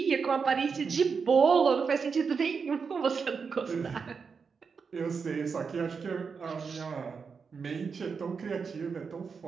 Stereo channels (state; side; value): quieter; left; 5.6 dB